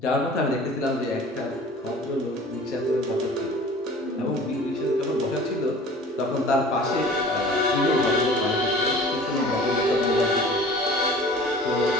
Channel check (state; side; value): normal; both; correlation 0.44